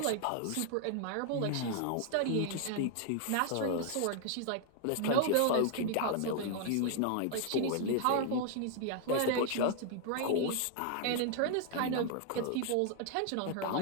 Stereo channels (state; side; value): different; both; correlation 0.00